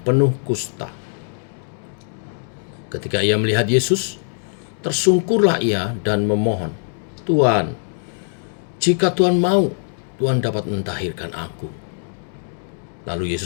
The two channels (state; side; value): silent; right; digital silence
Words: penuh kusta. Ketika ia melihat Yesus, tersungkurlah ia dan memohon, "Tuhan, jika Tuhan mau, Tuhan dapat mentahirkan aku." Lalu